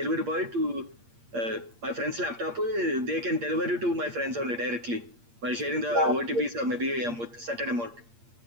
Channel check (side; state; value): left; late; 8.6 ms